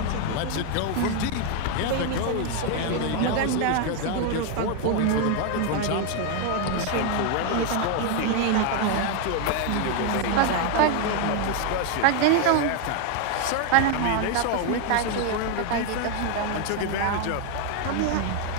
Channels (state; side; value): different; both; correlation 0.01